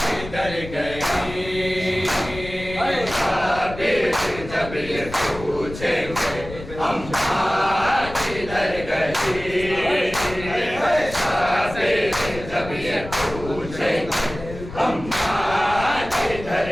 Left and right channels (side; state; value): left; noise; rumble, 12 dB below the sound